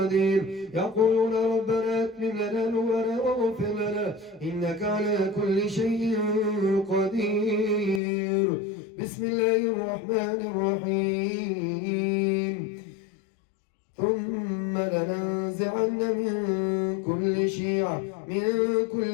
يقولون ربنا اتم لنا نورنا واغفر لنا إنك على كل شيء قدير. بسم الله الرحمن الرحيم. ثم لننزعن من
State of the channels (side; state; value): right; drops out; at 8.0 s